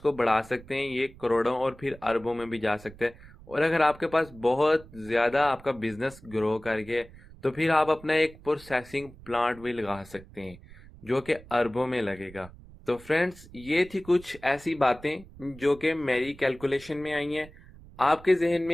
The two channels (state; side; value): noise; right; rumble, 20 dB below the sound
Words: बढ़ा सकते हैं, ये करोड़ों और फिर अरबों में भी जा सकते हैं। और अगर आपके पास बहुत ज्यादा आपका बिजनेस ग्रो कर गया तो फिर आप अपना एक प्रोसेसिंग प्लांट भी लगा सकते हैं जो कि अरबों में लगेगा। तो फ्रेंड्स, ये थी कुछ ऐसी बातें जो कि मेरी कैलकुलेशन में आई हैं। आपके जहन